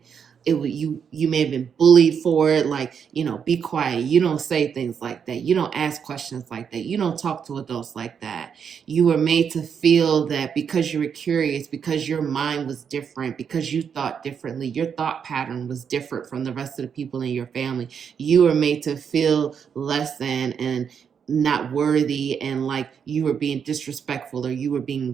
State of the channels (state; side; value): quieter; left; 7.2 dB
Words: you may have been bullied for it, like, you know, be quiet, you don't say things like that, you don't ask questions like that, you don't talk to adults like that. You were made to feel that because you were curious, because your mind was different, because you thought differently, your thought pattern was different from the rest of the people in your family, you were made to feel less than and not worthy, and like you were being disrespectful or you were